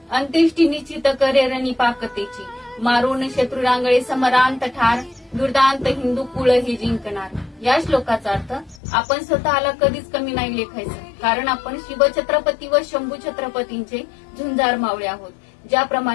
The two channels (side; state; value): right; drops out; at 8.8 s